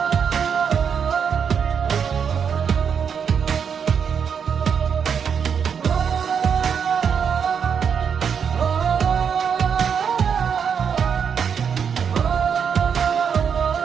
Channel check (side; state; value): left; quieter; 7.1 dB